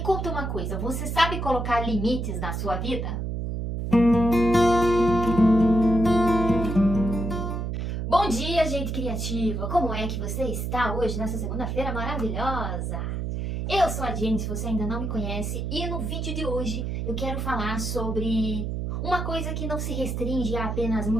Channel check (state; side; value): noise; right; hum, 3 dB below the sound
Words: conta uma coisa, você sabe colocar limites na sua vida? Bom dia, gente criativa! Como é que você está hoje, nessa segunda-feira maravilhosa? Eu sou a Jenny, se você ainda não me conhece, e no vídeo de hoje eu quero falar sobre uma coisa que não se restringe a apenas